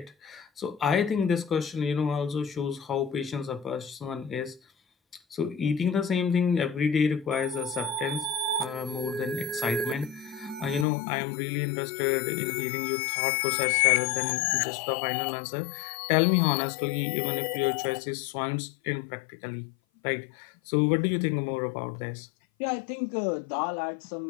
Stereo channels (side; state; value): right; drops out; at 10.9 s